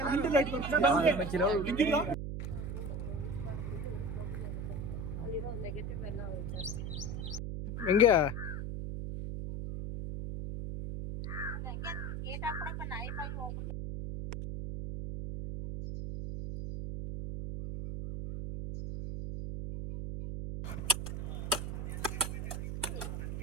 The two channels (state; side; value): noise; right; hum, 4 dB below the sound